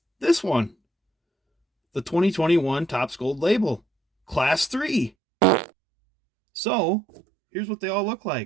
this one, the 2021 Topps Gold Label Class 3. So, here's what they all look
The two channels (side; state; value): left; drops out; at 5.1 s